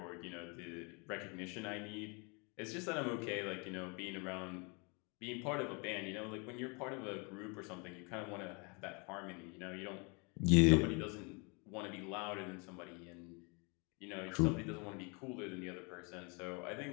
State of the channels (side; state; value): right; quieter; 32.2 dB